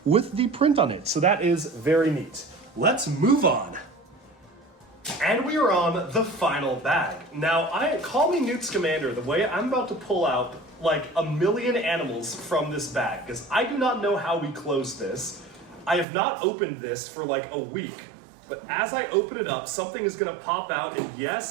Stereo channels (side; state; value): left; drops out; at 16.1 s